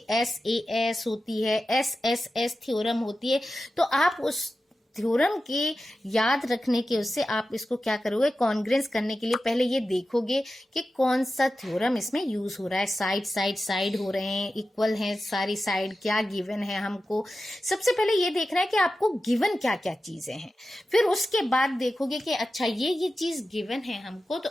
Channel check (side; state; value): both; normal; correlation 0.93